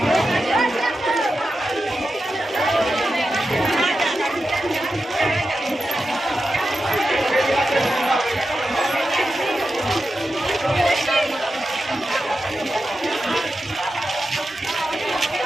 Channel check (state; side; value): normal; both; correlation 0.90